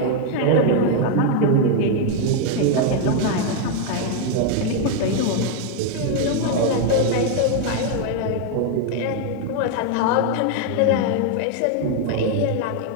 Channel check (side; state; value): both; different; correlation 0.01